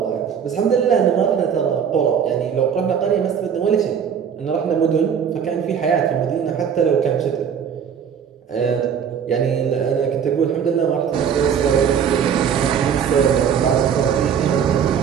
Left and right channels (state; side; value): quieter; left; 7.7 dB